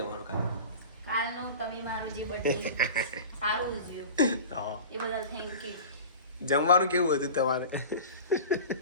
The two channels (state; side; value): inverted; both; correlation -0.36